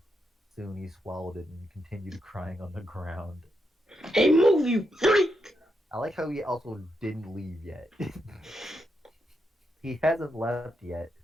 Soon he swallowed it and continued crying on the ground. Hey, move, you freak! I like how he also didn't leave yet. He hasn't left yet,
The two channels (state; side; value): normal; both; correlation 0.83